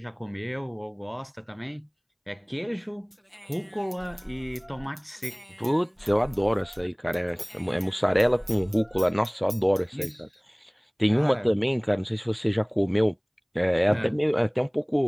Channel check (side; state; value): both; identical; correlation 1.00